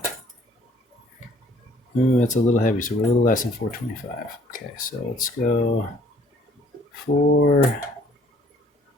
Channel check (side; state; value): both; normal; correlation 0.59